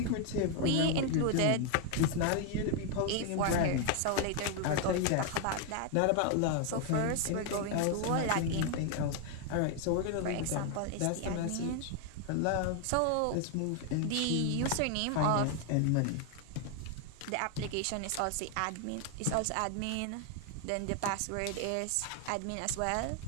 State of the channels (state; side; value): different; both; correlation 0.01